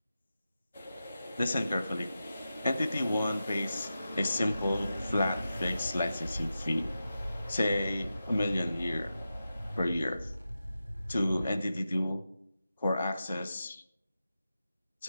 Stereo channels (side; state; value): both; inverted; correlation -0.92